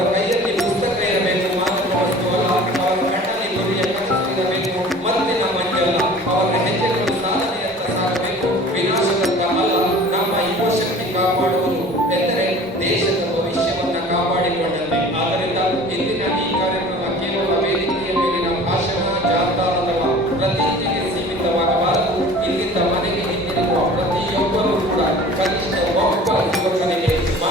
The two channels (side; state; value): both; normal; correlation 0.44